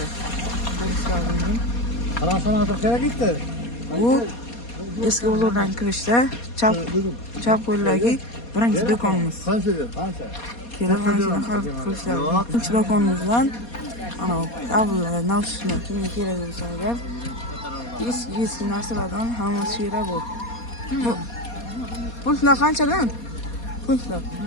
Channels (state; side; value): late; right; 4.2 ms